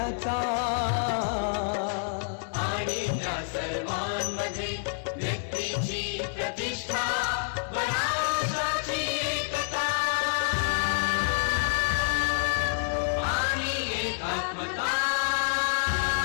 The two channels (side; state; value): right; silent; 59 dB below the other